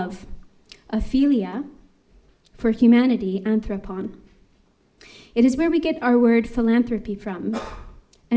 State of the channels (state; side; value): identical; both; correlation 1.00